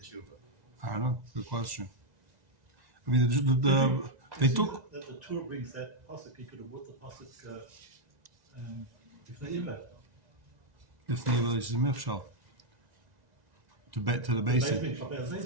tshuva? I don't know. Good question. I mean, they took. That the tour brings that pasuk, he could have brought the pasuk if they ever. If the is Michshal to the basic.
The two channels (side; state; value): left; late; 1.9 ms